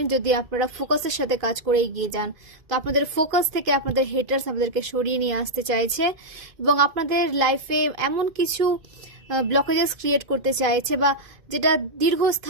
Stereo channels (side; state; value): left; late; 2.5 ms